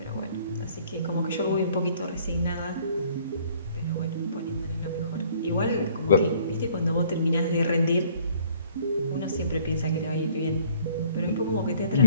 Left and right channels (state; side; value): inverted; both; correlation -0.58